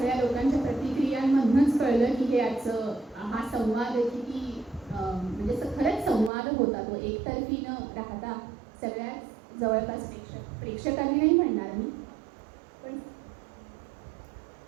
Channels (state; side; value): drops out; left; at 6.3 s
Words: लोकांच्या प्रतिक्रियांमधूनच कळलं की हे आजचं हा संवाद किती म्हणजे खरंच संवाद होता तो एकतर्फी न राहता सगळ्या जवळपास प्रेक्षकांनी नाही म्हणणार मी, पण